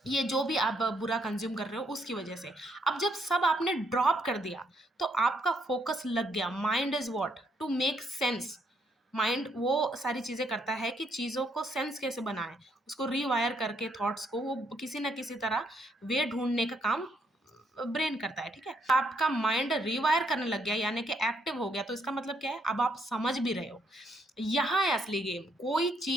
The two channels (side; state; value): both; normal; correlation 0.73